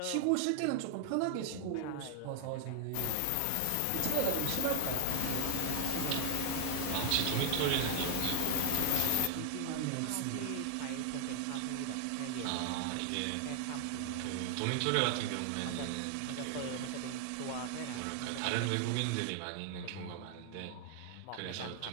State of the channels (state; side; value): different; both; correlation 0.00